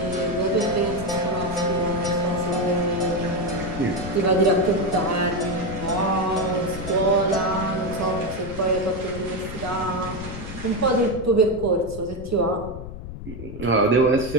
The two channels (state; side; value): noise; left; rumble, 11 dB below the sound